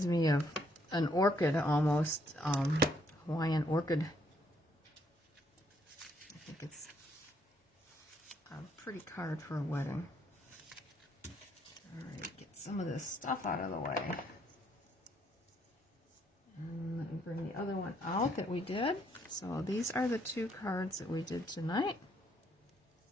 me of an orchid almost, Hawaiian orchid. I think it's a pretty card for a wedding. Alright, get some of this stuff out of the way. And let me bring the other one out that we did. So these are the two cards that we did tonight.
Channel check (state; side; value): normal; both; correlation 0.70